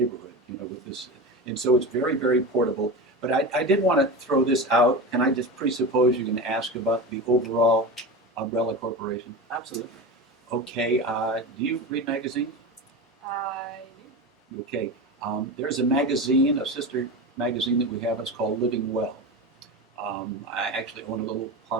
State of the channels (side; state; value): both; normal; correlation 0.25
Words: with this, and so it's very, very portable. But I did want to throw this out. Can I just presuppose you're going to ask about the overall umbrella corporation? Absolutely. Okay. Do you read magazines? I do. Okay. There's a magazine, a sister magazine that we have. It's called Living Well. I actually own a little